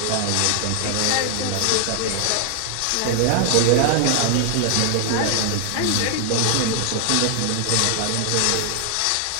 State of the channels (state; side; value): different; both; correlation 0.00